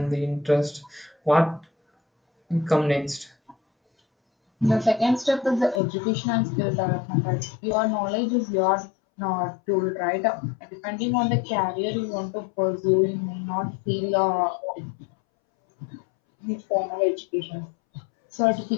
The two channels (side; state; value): right; drops out; at 5.8 s